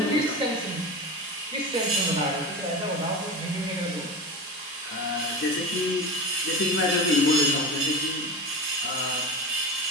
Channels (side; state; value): both; normal; correlation 0.26